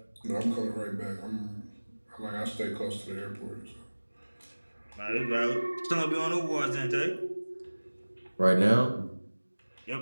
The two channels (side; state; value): both; inverted; correlation -1.00